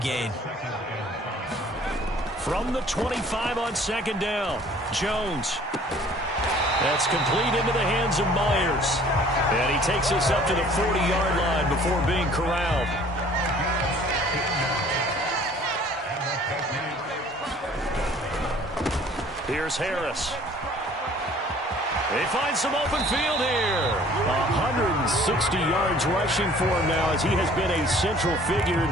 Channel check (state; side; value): normal; both; correlation 0.53